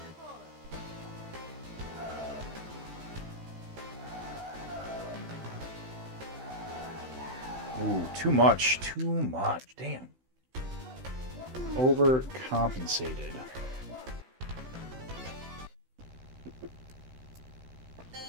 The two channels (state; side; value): late; left; 16 ms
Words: Ooh, too much. Too much. Damn. Overcompensated.